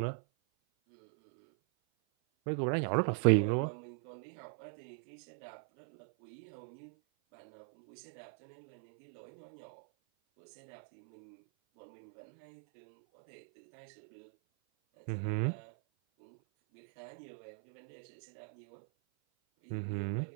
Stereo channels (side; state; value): left; silent; 52 dB below the other